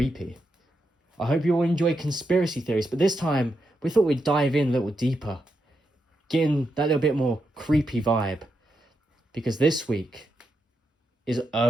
I hope you all enjoy conspiracy theories, but this time we thought we'd dive in a little deeper, getting that little bit more creepy vibe, because this week is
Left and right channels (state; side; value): normal; both; correlation 0.84